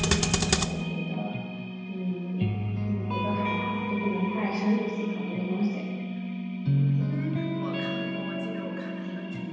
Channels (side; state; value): both; identical; correlation 1.00